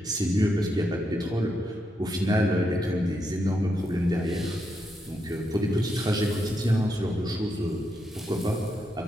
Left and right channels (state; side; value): normal; both; correlation 0.82